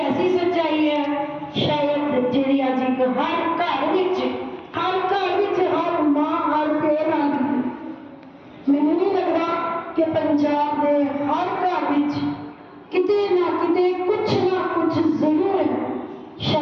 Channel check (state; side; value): identical; both; correlation 1.00